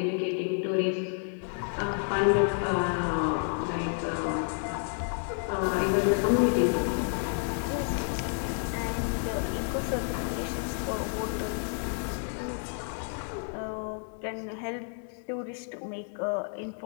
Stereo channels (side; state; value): right; silent; 58 dB below the other